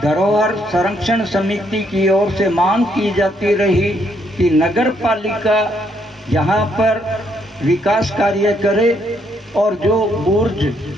धरोहर संरक्षण समिति की ओर से मांग की जाती रही कि नगर पालिका यहाँ पर विकास कार्य करे और जो बुर्ज,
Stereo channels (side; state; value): both; normal; correlation 0.73